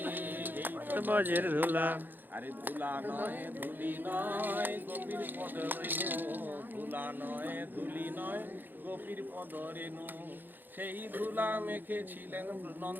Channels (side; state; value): left; late; 0.090 ms